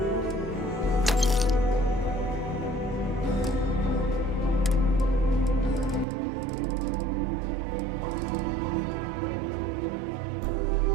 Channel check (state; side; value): drops out; left; at 6.1 s